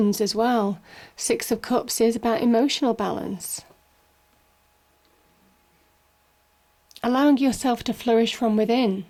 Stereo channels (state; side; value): identical; both; correlation 1.00